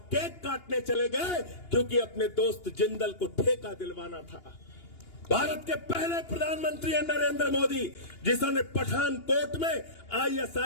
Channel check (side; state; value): right; late; 2.8 ms